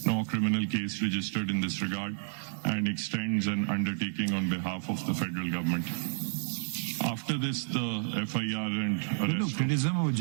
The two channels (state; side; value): silent; left; digital silence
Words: no criminal case registered in this regard, and extends an undertaking on behalf of the federal government. After this, the FIR and arrest. Criticism of